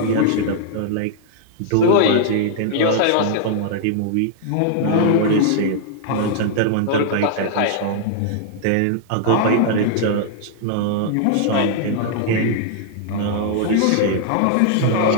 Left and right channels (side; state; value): both; different; correlation -0.01